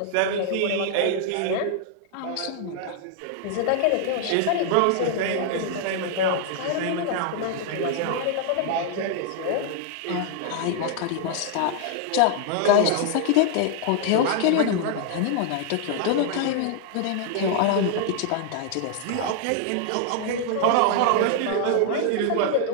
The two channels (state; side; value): different; both; correlation 0.00